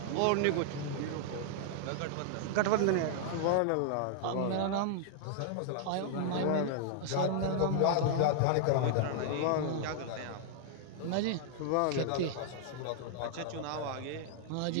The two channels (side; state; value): both; different; correlation -0.01